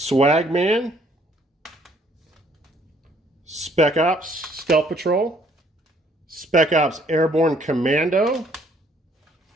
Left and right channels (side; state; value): both; normal; correlation 0.63